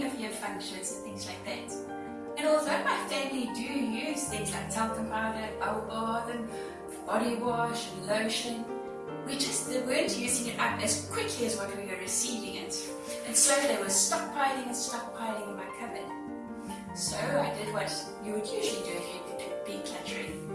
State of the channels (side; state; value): both; identical; correlation 1.00